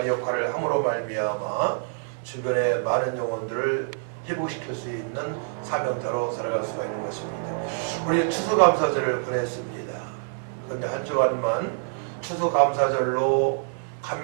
역할을 함으로 말미암아 주변의 많은 영혼들을 회복시킬 수 있는 사명자로 살아갈 수가 있는 것입니다. 우리 추수감사절을 보냈습니다. 그런데 한 주간만 추수감사절로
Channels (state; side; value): silent; left; digital silence